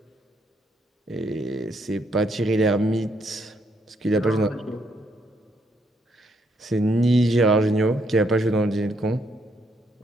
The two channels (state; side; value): normal; both; correlation 0.74